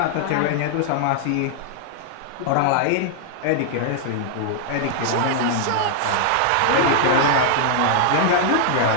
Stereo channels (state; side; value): different; both; correlation -0.01